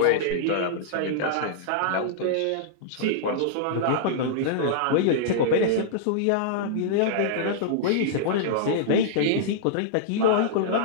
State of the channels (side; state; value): both; different; correlation -0.02